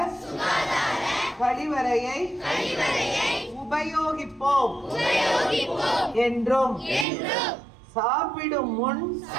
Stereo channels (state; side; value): drops out; left; at 7.1 s